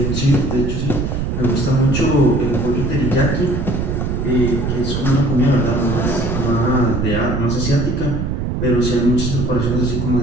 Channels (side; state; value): right; noise; rumble, 1 dB below the sound